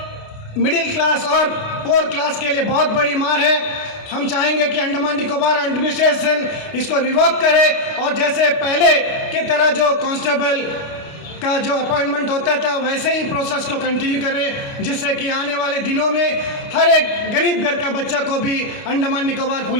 मिडिल क्लास और पोर क्लास के लिए बहुत बड़ी मार है। हम चाहेंगे कि अंडमान निकोबार एडमिनिस्ट्रेशन इसको रिवोक करे और जैसे पहले की तरह जो कांस्टेबल का जो अपॉइंटमेंट होता था वैसे ही प्रोसेस को कंटिन्यू करें, जिससे कि आने वाले दिनों में हर एक गरीब घर का बच्चा को भी अंडमान निकोबार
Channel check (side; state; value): right; late; 29 ms